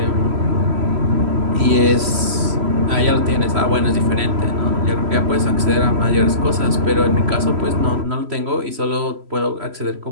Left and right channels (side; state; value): left; late; 3.0 ms